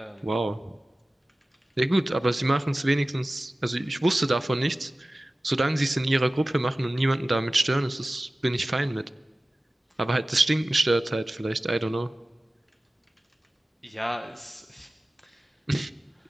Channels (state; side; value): normal; both; correlation 0.97